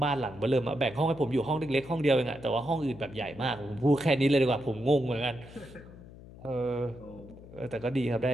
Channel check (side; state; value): left; noise; hum, 18 dB below the sound